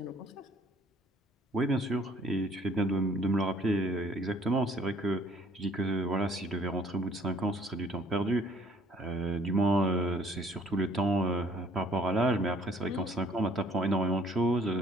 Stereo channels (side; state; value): both; normal; correlation 0.58